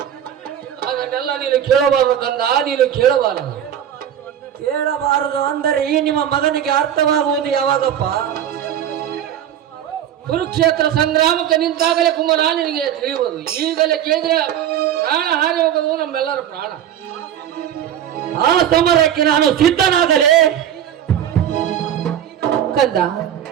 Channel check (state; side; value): quieter; left; 10.2 dB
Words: ಅದನ್ನೆಲ್ಲ ನೀನು ಕೇಳಬಾರದು ಕಂದ, ನೀನು ಕೇಳಬಾರದು. ಕೇಳಬಾರದು ಅಂದರೆ ಈ ನಿಮ್ಮ ಮಗನಿಗೆ ಅರ್ಥವಾಗುವುದು ಯಾವಾಗಪ್ಪ? ಕುರುಕ್ಷೇತ್ರ ಸಂಗ್ರಾಮಕ್ಕೆ ನಿಂತಾಗಲೇ ಕುಮಾರ ನಿನಗೆ ತಿಳಿಯುವುದು. ಈಗಲೇ ಕೇಳಿದ್ರೆ ಪ್ರಾಣ ಹಾರಿ ಹೋಗೋದು ನಮ್ಮೆಲ್ಲರ ಪ್ರಾಣ. ಆ ಸಮರಕ್ಕೆ ನಾನು ಸಿದ್ಧನಾಗಲೇ. ಕಂದ,